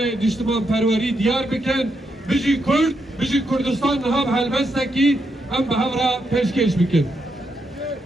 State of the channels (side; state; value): both; normal; correlation 0.81